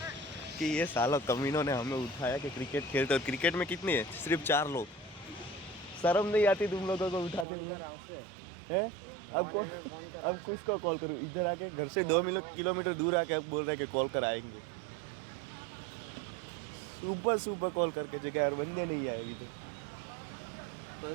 कि ये साला कमीनों ने हमें उठाया कि क्रिकेट खेलते, और क्रिकेट में कितनी है, सिर्फ 4 लोग। शर्म नहीं आती तुम लोगों को उठाते हुए? हैं? अब कुछ को कॉल करूँ? इधर आके घर से 2 किलोमीटर दूर आके अब बोल रहे हैं कि कॉल कर आएंगे। सुबह सुबह कॉल करके जगह यार बंदे नहीं आएगी तो कोई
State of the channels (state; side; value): drops out; left; at 7.5 s